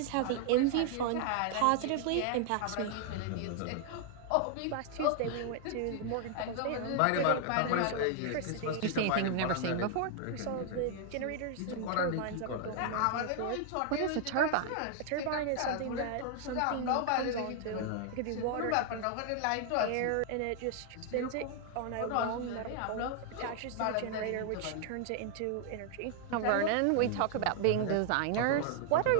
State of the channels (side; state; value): both; different; correlation 0.00